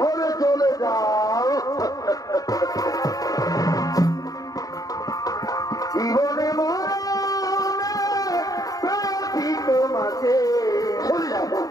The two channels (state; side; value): late; right; 0.18 ms